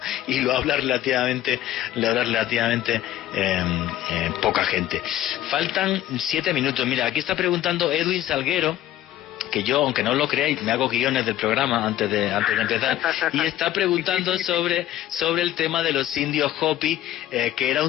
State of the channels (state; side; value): quieter; right; 13.3 dB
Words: y lo habla relativamente poca gente. Faltan 7 minutos. Mira, aquí está preguntando Edwin Salguero, que yo, aunque no lo creáis, me hago guiones del programa antes de empezar, y está preguntando sobre el tema de los indios Hopi, que era